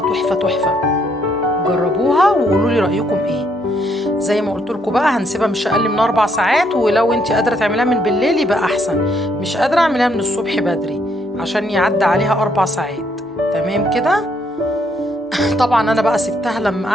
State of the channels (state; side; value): normal; both; correlation 0.71